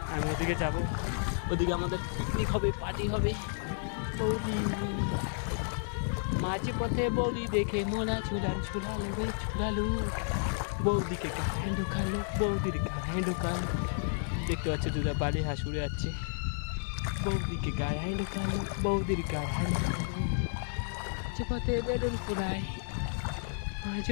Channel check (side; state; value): right; silent; digital silence